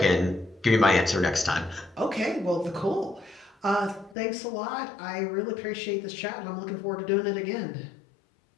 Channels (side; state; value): right; drops out; at 4.2 s